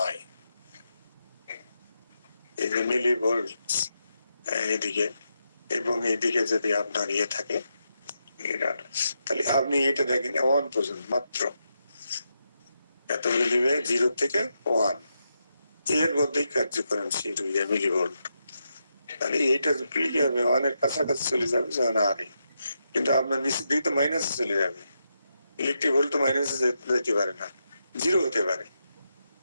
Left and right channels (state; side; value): inverted; both; correlation -0.84